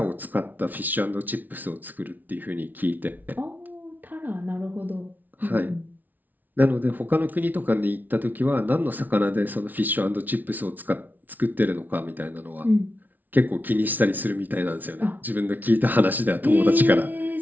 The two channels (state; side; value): late; left; 0.082 ms